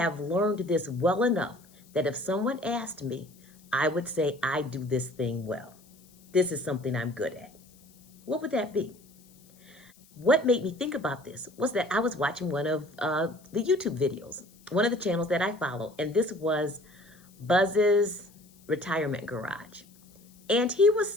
learned this well enough that if someone asked me, I would say I do this thing well. This is something I'm good at. What would that be? What made me think about this was that I was watching one of the YouTube videos, one of the channels that I follow, and this was Buzz's Retirement Garage. And he was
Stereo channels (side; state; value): left; noise; hiss, 27 dB below the sound